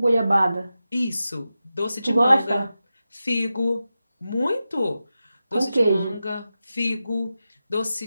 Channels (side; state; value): both; inverted; correlation -0.92